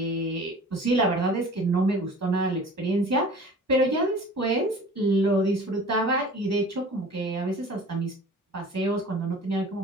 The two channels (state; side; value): normal; both; correlation 0.43